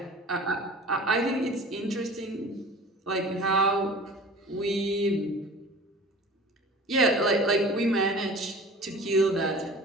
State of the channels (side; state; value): both; normal; correlation 0.42